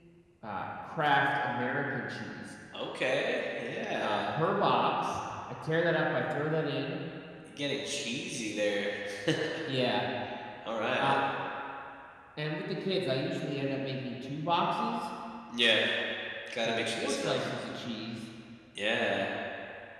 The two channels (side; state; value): both; identical; correlation 1.00